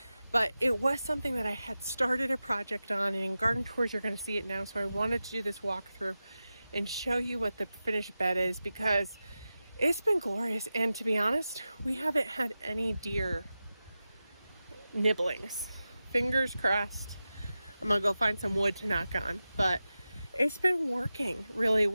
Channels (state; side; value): inverted; both; correlation -0.93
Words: But it was something that I had started a project on, and in garden tours you're going to see it now. So I wanted to do this walkthrough and show you what the finished bed is, because it's been glorious. And to be honest, we haven't had any deer nibblings. Fingers crossed. I'm gonna go find some wood to knock on, but it's been working really